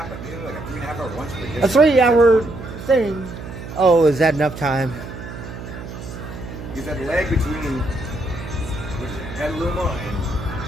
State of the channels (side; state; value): right; noise; hum, 11 dB below the sound